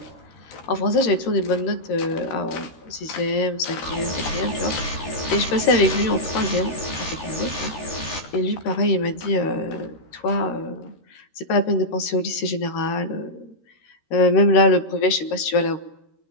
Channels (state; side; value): late; right; 13 ms